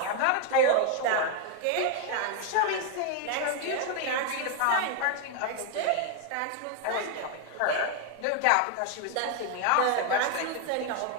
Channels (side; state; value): both; different; correlation 0.01